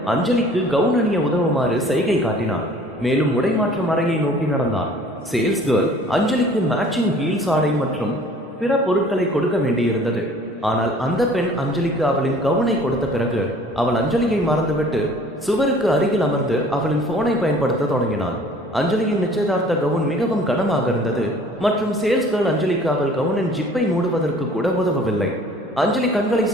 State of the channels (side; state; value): both; normal; correlation 0.51